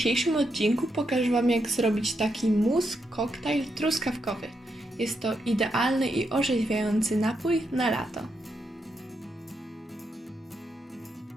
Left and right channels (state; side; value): normal; both; correlation 0.82